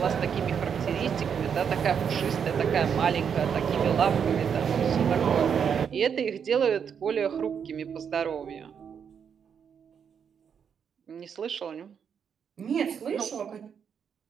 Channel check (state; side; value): quieter; left; 7.3 dB